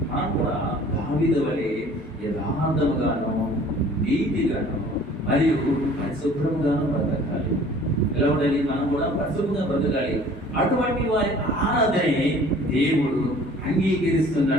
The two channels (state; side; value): normal; both; correlation 0.50